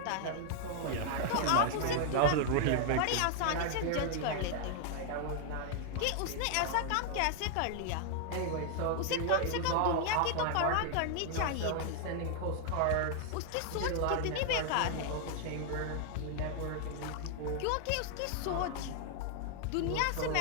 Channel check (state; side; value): different; both; correlation 0.00